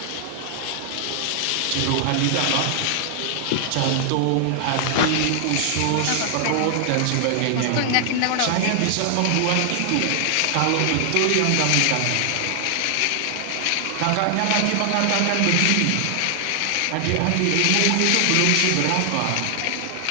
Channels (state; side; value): different; both; correlation 0.00